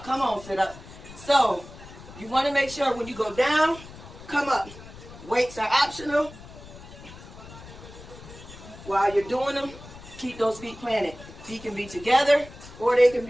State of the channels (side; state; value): left; noise; rumble, 17 dB below the sound